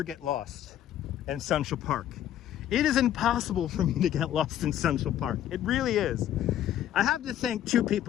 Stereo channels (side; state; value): right; quieter; 11.4 dB